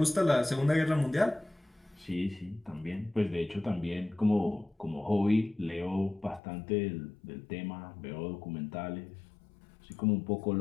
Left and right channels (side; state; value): right; drops out; at 6.4 s